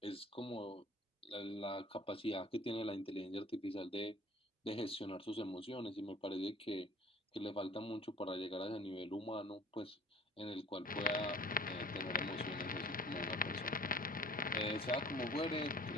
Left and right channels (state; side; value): normal; both; correlation 0.47